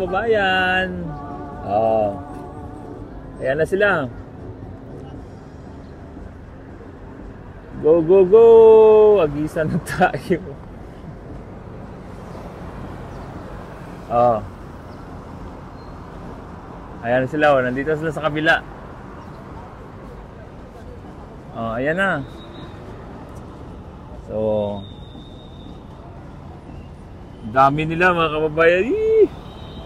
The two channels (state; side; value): identical; both; correlation 1.00